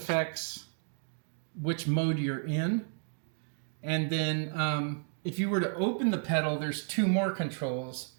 which mode you're in. And then if you were to open the pedal, there's 2 more controls.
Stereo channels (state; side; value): silent; left; 56 dB below the other